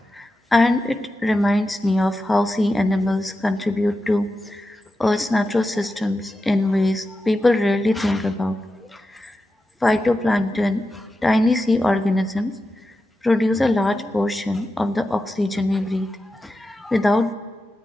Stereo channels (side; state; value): both; normal; correlation 0.91